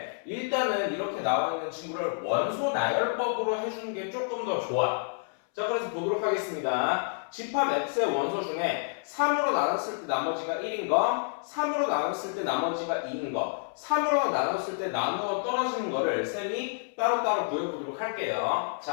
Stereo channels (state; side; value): silent; right; 59 dB below the other